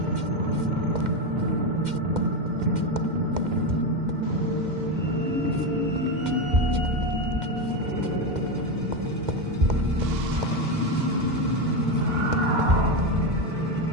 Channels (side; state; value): left; late; 2.1 ms